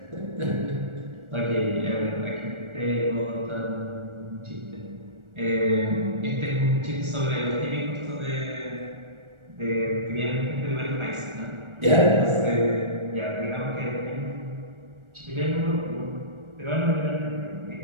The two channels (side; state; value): left; late; 1.4 ms